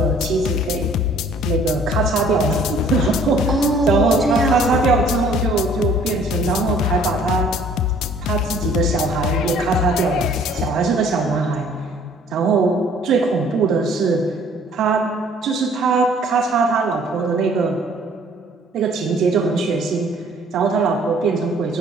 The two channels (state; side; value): normal; both; correlation 0.56